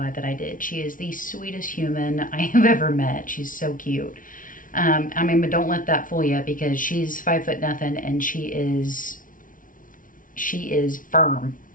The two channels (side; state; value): right; late; 0.39 ms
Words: that I did. She is the sweetest human I have ever met. She's so cute. But don't let that fool you, because she's 5 foot nothing and she is firm.